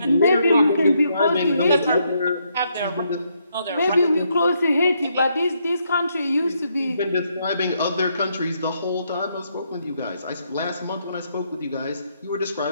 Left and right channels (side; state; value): both; inverted; correlation -0.76